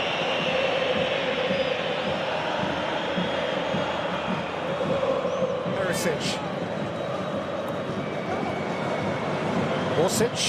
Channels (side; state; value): both; identical; correlation 1.00